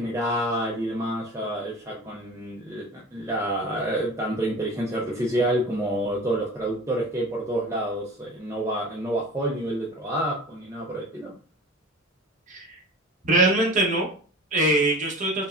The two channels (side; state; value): both; normal; correlation 0.37